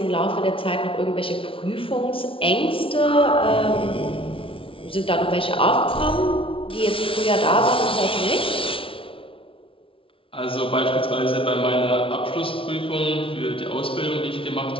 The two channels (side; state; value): right; late; 0.26 ms